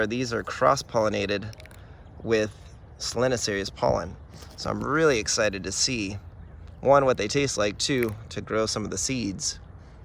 these are cross-pollinated with Solanacea's pollen. So I'm really excited to see, one, what they taste like, two, to grow some of the seeds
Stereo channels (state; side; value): identical; both; correlation 1.00